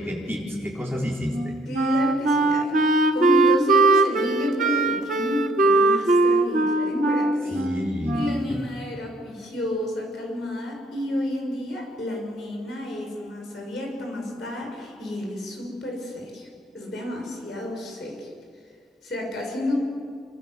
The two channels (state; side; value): normal; both; correlation 0.63